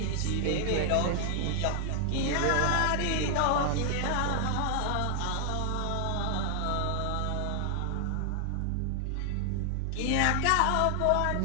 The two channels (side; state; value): both; different; correlation 0.00